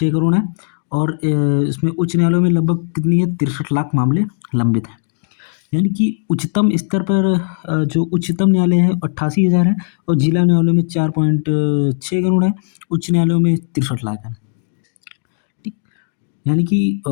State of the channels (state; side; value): silent; right; digital silence